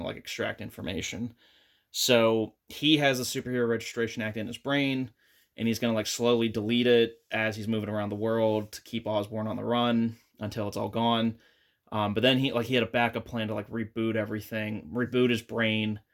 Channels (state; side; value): identical; both; correlation 1.00